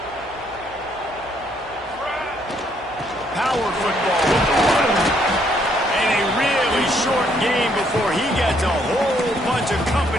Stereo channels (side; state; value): left; noise; hum, 24 dB below the sound